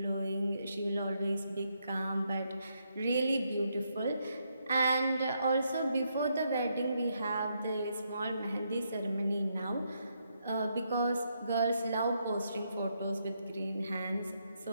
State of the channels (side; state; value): both; inverted; correlation -0.78